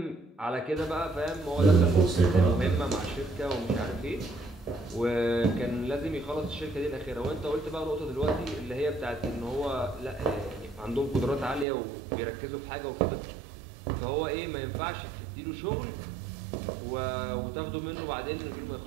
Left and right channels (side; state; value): left; drops out; at 11.7 s